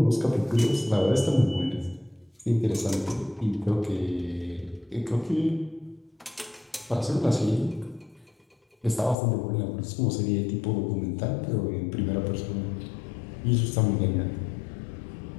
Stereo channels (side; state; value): right; drops out; at 9.2 s